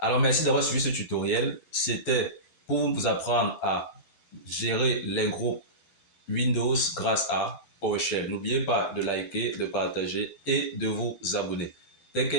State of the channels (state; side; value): late; right; 11 ms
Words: merci d'avoir suivi ce tutoriel. C'était pour vous apprendre à gérer les groupes Windows grâce à PowerShell. N'oubliez pas de liker, de partager et de vous abonner. Take